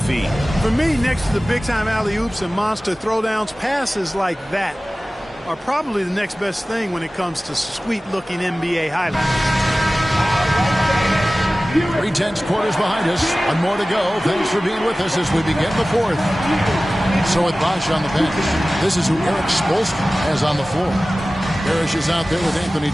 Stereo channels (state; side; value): normal; both; correlation 0.97